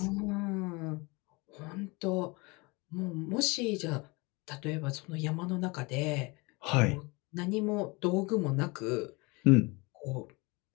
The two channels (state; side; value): quieter; right; 26.5 dB